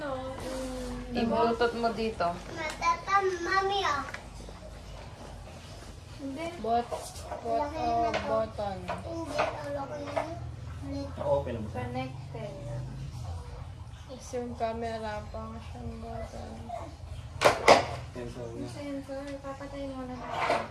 yung... i-bluetooth mo dito. Matata, mami, oh. Hindi. button. Hindi, ulo ko na yun. Ulit. Okay lang siya. Connected. Tapos yung camera pang siyang button. Sensor niya. Sensor. Papatayin mo na natin.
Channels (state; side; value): identical; both; correlation 1.00